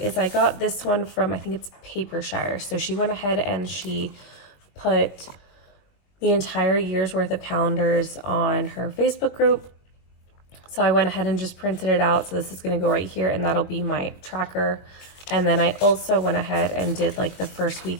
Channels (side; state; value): right; late; 21 ms